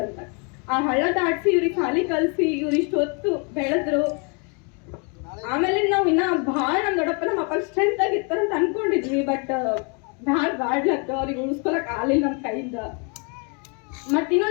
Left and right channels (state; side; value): quieter; right; 35.3 dB